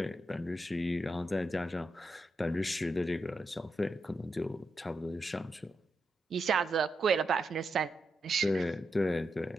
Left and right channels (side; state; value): both; normal; correlation 0.85